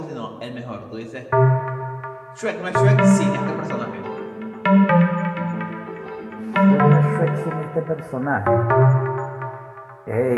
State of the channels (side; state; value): both; identical; correlation 1.00